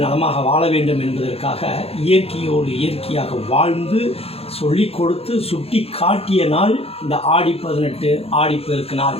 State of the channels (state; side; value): late; right; 0.29 ms